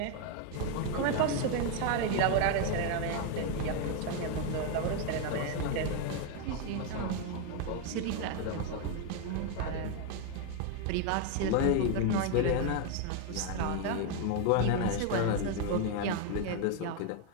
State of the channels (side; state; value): both; different; correlation 0.01